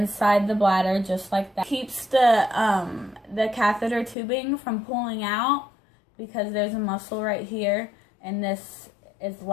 the bladder just like that. Keeps the catheter tubing from pulling out, because there's a muscle right here, and this is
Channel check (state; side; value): drops out; right; at 4.2 s